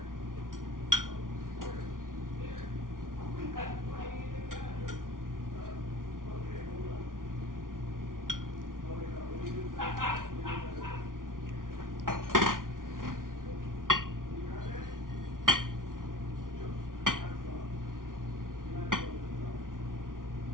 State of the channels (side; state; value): left; late; 0.89 ms